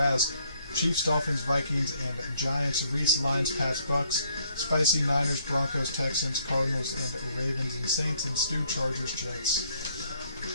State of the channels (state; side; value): inverted; both; correlation -0.68